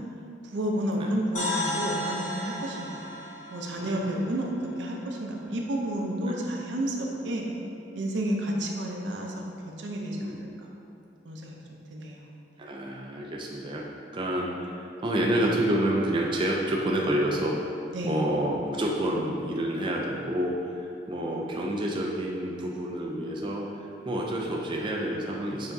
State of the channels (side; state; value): both; normal; correlation 0.59